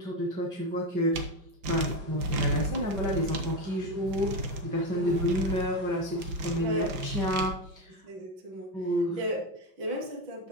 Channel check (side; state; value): left; late; 5.9 ms